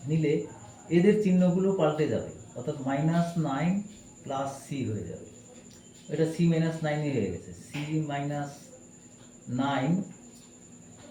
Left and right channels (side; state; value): both; identical; correlation 1.00